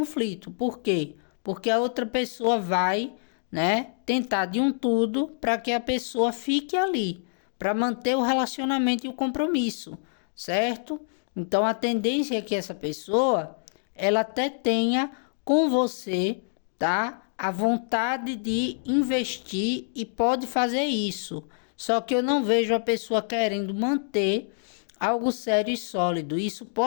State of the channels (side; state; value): right; silent; digital silence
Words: Por quê? Porque a outra pessoa vai, né, tentar de um tudo para que a pessoa fique ali, para manter o relacionamento e o compromisso, certo? Então a tendência é que essa pessoa, ela até tenha com você, tá? A vontade de investir e pode fazer isso. Só que eu não vejo a pessoa querendo manter algo sério e sólido. Isso